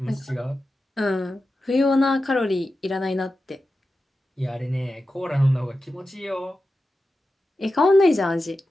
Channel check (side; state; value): both; normal; correlation 0.92